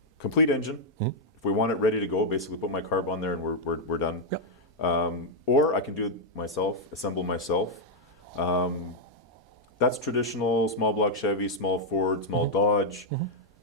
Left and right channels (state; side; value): normal; both; correlation -0.03